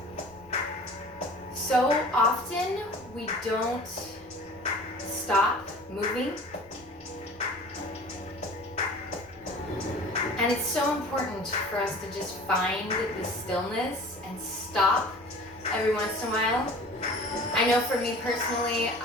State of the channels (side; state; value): left; noise; rumble, 28 dB below the sound